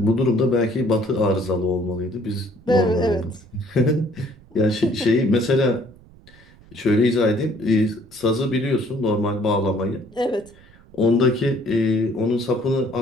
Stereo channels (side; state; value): right; noise; rumble, 25 dB below the sound